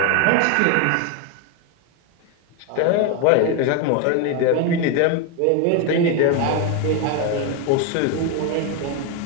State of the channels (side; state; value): both; different; correlation 0.01